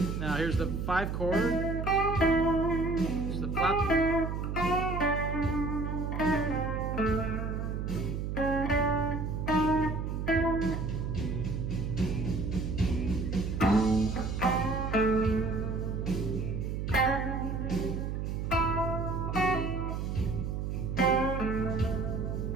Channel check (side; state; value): right; noise; hum, 3 dB below the sound